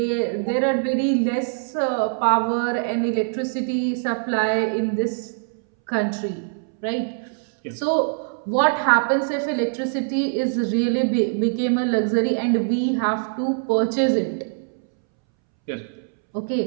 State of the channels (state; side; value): silent; left; 63 dB below the other